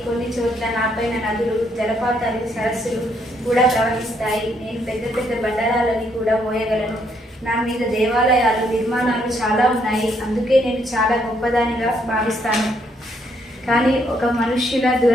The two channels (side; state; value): both; normal; correlation 0.72